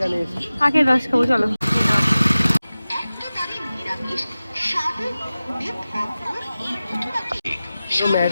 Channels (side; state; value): both; inverted; correlation -0.96